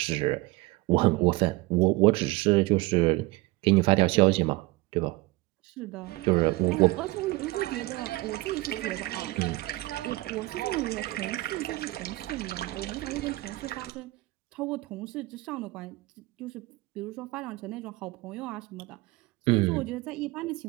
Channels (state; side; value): quieter; left; 20.8 dB